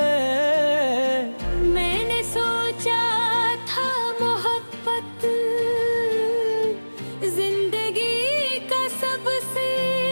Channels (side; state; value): both; inverted; correlation -1.00